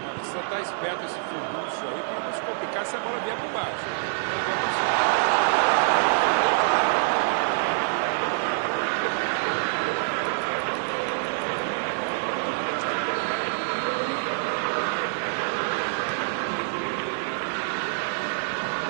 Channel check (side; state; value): left; silent; 59 dB below the other